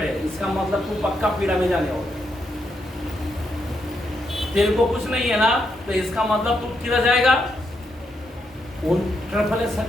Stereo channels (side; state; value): both; normal; correlation 0.80